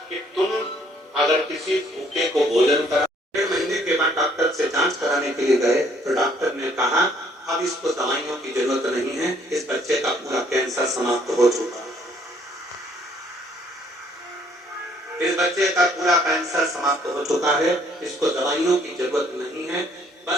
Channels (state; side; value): normal; both; correlation 0.63